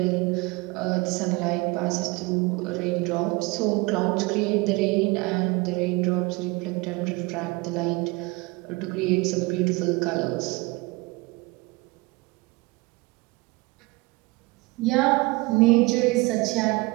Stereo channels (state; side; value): quieter; left; 24.6 dB